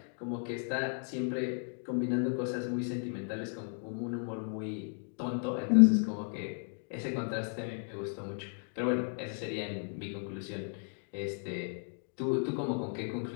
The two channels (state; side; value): silent; right; 55 dB below the other